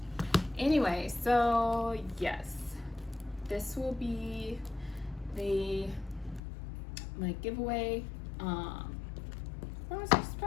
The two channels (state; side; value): drops out; right; at 6.4 s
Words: Anyway, so yes, this will be my giveaway for my